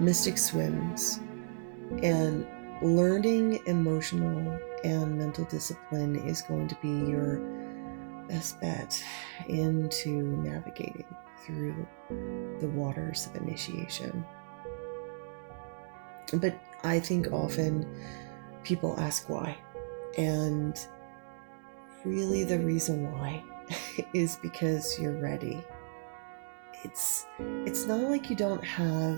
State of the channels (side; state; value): left; silent; digital silence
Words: mystic swims, and learning emotional and mental discipline is going to be your best bet into navigating through the waters of initiation. But I think often people ask why. And really the reason why is because you're ready. It's not like you don't